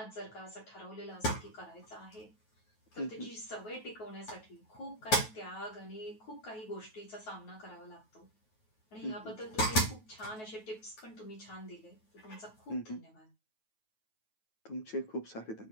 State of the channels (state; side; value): late; right; 9.3 ms